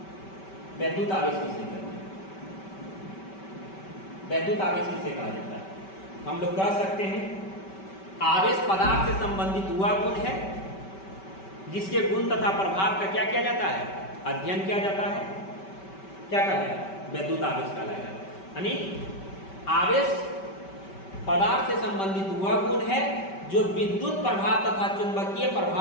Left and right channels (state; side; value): late; right; 5.2 ms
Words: वैद्युत आवेश किसे कहते हैं, वैद्युत आवेश किसे कहा जाता है, हम लोग कह सकते हैं आवेश पदार्थ से संबंधित हुआ गुण है जिसके गुण तथा प्रभाव का क्या किया जाता है, अध्ययन किया जाता है, क्या कहलाएगा, वैद्युत आवेश कहलाएगा। यानी आवेश पदार्थ से संबंधित हुआ गुण है जो विद्युत प्रभाव तथा चुंबकीय